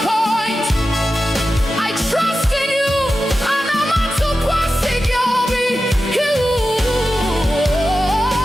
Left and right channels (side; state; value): both; normal; correlation 0.92